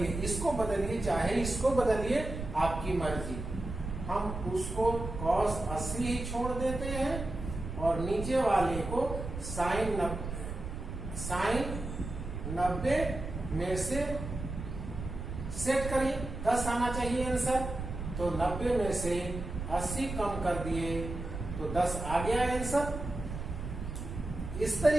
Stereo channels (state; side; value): noise; right; rumble, 7 dB below the sound